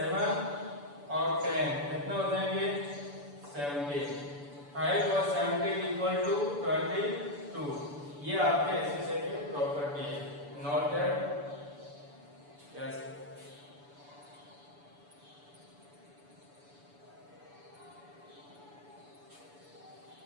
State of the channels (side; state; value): left; late; 6.9 ms